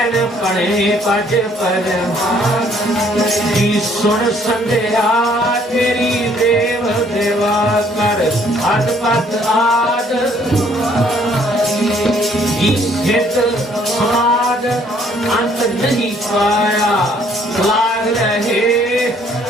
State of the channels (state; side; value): normal; both; correlation 0.63